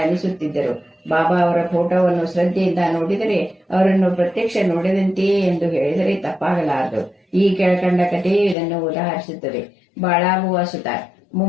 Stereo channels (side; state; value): right; drops out; at 8.6 s